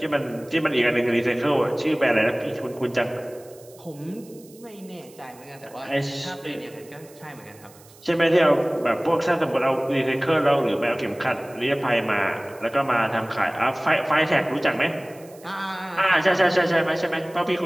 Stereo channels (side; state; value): right; noise; hiss, 25 dB below the sound